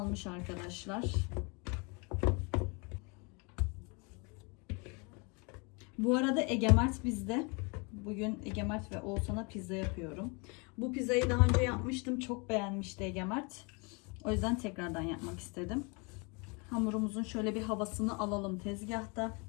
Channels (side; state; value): right; quieter; 31.5 dB